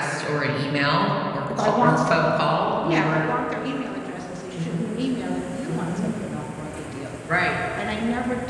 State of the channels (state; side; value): identical; both; correlation 1.00